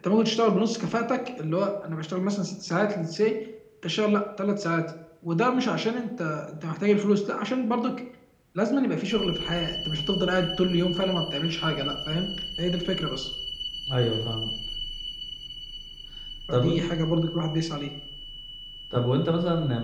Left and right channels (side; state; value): both; identical; correlation 1.00